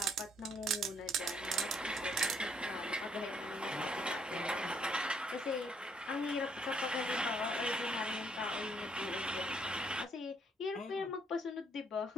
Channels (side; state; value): both; normal; correlation 0.69